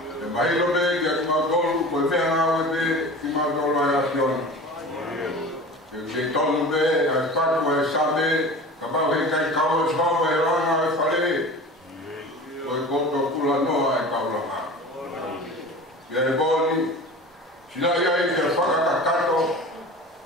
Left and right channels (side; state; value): both; normal; correlation 0.36